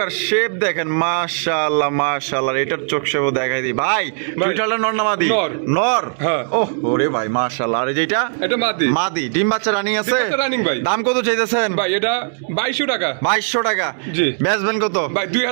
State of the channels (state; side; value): silent; left; digital silence